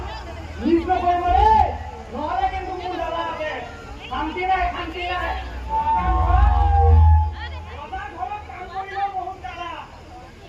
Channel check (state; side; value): identical; both; correlation 1.00